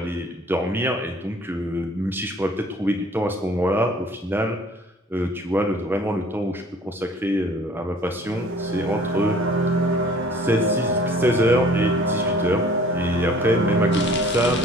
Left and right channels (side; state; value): both; normal; correlation 0.52